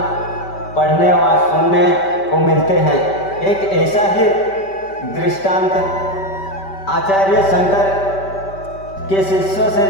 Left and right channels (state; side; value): late; right; 5.1 ms